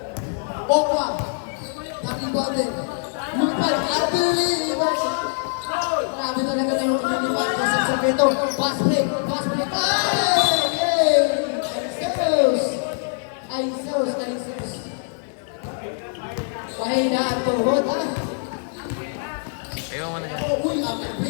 Walk one. Nag-rebounder. Lumipad. Unbelievable. Grabe talaga na yung lumipad. Kasi sa peto. Pass play. Pass play. Hey! Aisos. Pahina at tuhod, ha? Ayaw mo na yan. Uy,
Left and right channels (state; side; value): silent; right; digital silence